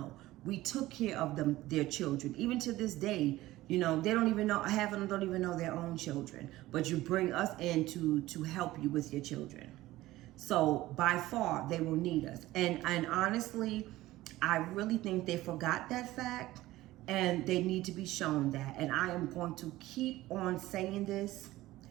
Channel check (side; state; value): left; quieter; 16.8 dB